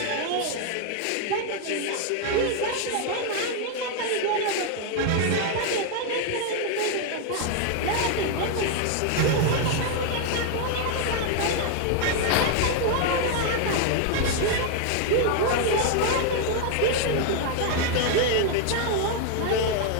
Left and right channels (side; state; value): both; different; correlation 0.00